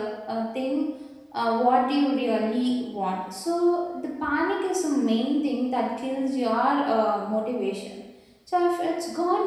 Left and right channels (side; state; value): both; identical; correlation 1.00